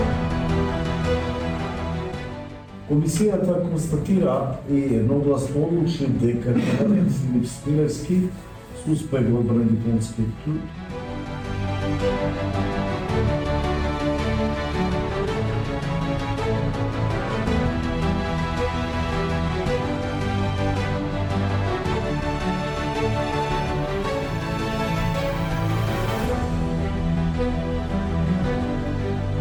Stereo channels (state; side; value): identical; both; correlation 1.00